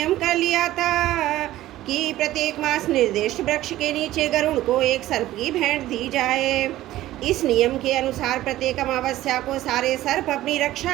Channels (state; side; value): quieter; left; 15.1 dB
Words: कर लिया था कि प्रत्येक मास निर्दिष्ट वृक्ष के नीचे गरुण को एक सर्प की भेंट दी जाए। इस नियम के अनुसार प्रत्येक अमावस्या को सारे सर्प अपनी